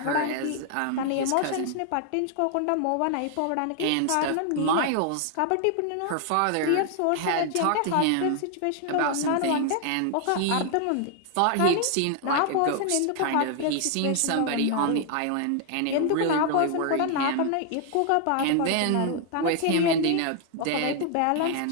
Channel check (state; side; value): different; both; correlation 0.00